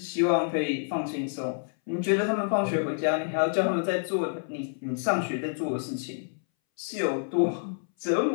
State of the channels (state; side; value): silent; right; 59 dB below the other